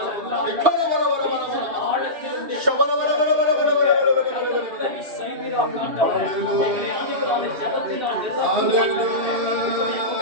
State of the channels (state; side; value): late; left; 2.7 ms